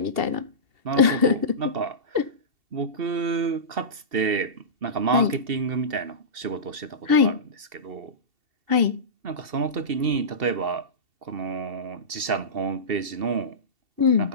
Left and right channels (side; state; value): left; late; 2.7 ms